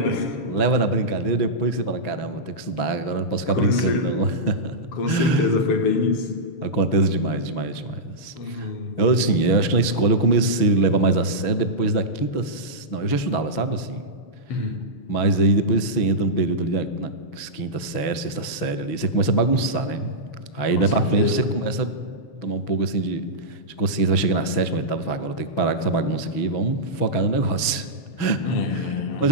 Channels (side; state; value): right; late; 6.2 ms